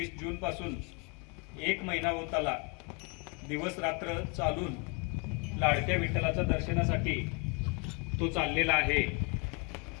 जून पासून 1 महिना होत आला दिवस रात्र चालून लाडक्या विठ्ठलाच्या दर्शनासाठी तो चाललेला आहे.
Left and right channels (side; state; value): right; quieter; 31.6 dB